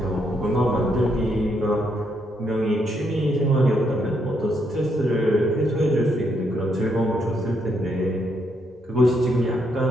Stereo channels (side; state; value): both; normal; correlation 0.76